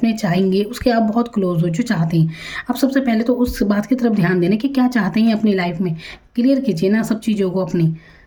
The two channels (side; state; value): both; identical; correlation 1.00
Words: चाहेंगे, उसके आप बहुत क्लोज हो, जो चाहते हैं। आप सबसे पहले तो उस बात की तरफ ध्यान देना कि क्या चाहते हैं अपनी लाइफ में, क्लियर कीजिए ना सब चीज़ों को अपनी,